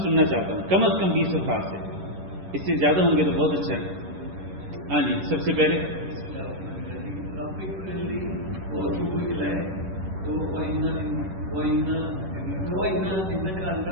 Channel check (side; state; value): left; late; 10 ms